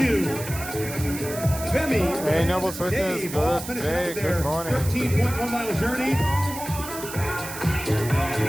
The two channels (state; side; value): noise; right; hiss, 10 dB below the sound